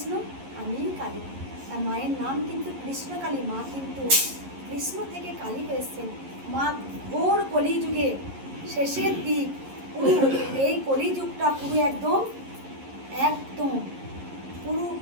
আমিই কালী। তার মায়ের নাম কিন্তু কৃষ্ণকালী। মা কিন্তু কৃষ্ণ থেকে কালীকে এসছেন। মা ঘোর কলিযুগে শেষের দিক, পুরো এই কলিযুগটা পুরো একদম পুরো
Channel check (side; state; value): left; late; 11 ms